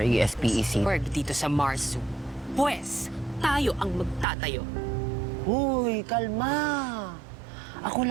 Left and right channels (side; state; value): left; drops out; at 4.2 s